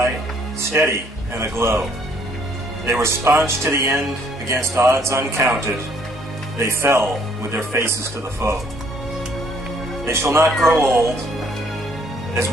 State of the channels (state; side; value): normal; both; correlation 0.64